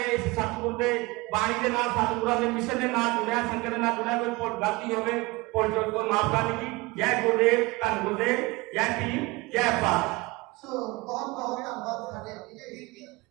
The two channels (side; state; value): left; quieter; 23.2 dB